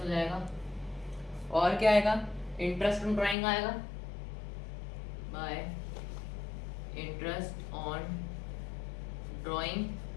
जाएगा। और क्या आएगा, इंटरेस्ट ऑन ड्राइंग आएगा बाय इंटरेस्ट ऑन ड्राइंग,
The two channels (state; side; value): drops out; right; at 3.4 s